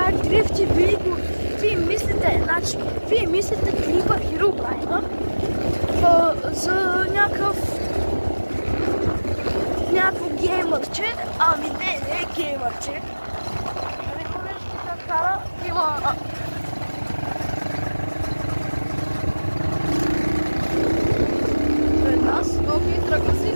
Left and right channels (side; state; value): both; inverted; correlation -1.00